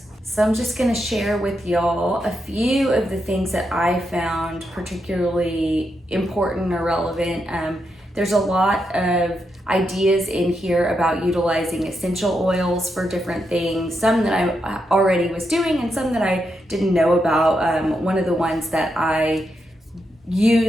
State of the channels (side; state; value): both; normal; correlation 0.83